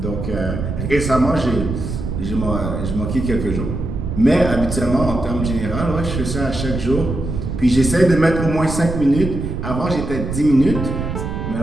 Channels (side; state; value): right; noise; rumble, 4 dB below the sound